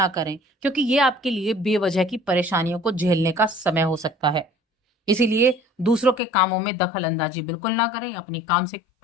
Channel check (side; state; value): right; drops out; at 6.2 s